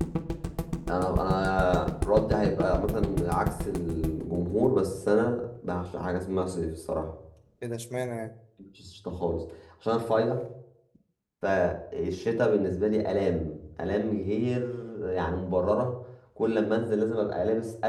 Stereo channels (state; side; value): identical; both; correlation 1.00